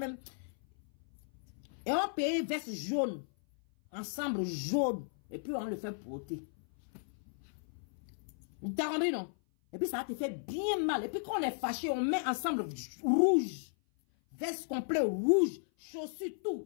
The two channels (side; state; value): right; silent; 54 dB below the other